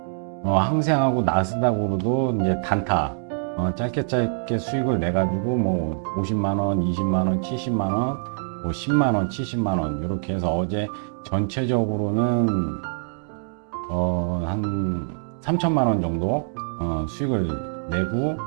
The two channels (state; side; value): silent; left; digital silence